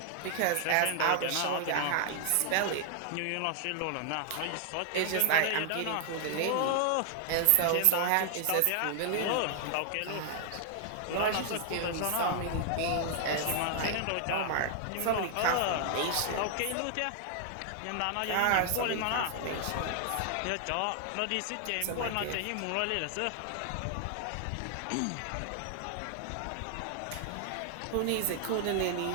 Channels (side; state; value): both; different; correlation 0.00